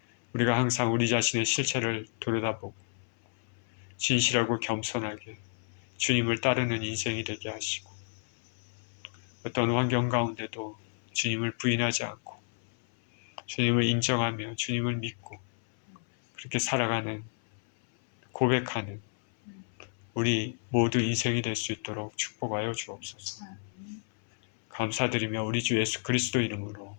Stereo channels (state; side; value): silent; right; 57 dB below the other